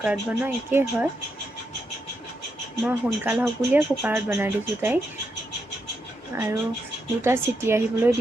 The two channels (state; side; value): normal; both; correlation 0.82